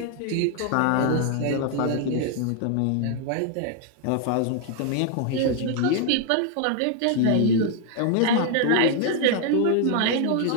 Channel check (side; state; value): both; different; correlation 0.00